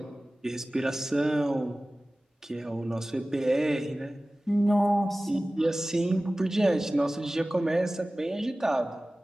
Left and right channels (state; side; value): normal; both; correlation 0.97